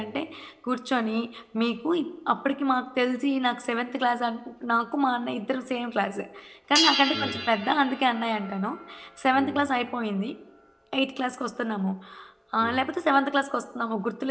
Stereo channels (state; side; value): identical; both; correlation 1.00